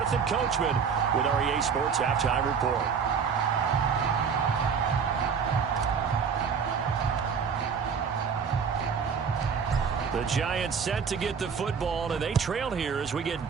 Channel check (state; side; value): quieter; left; 6.4 dB